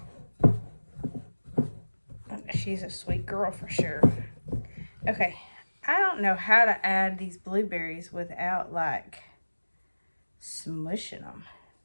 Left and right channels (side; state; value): both; inverted; correlation -1.00